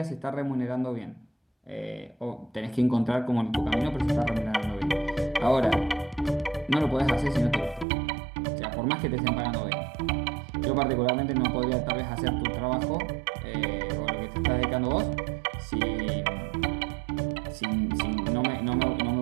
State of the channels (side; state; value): left; drops out; at 7.9 s